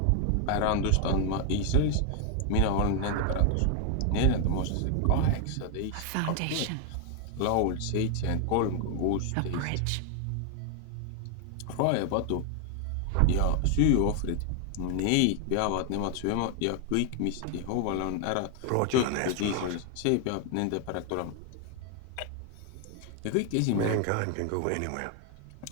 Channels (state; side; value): different; both; correlation 0.00